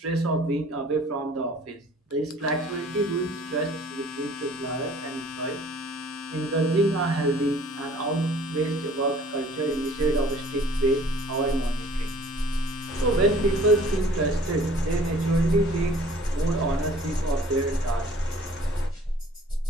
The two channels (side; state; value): both; normal; correlation 0.52